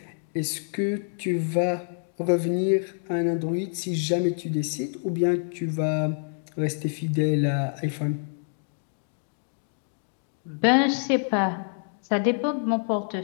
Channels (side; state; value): right; silent; digital silence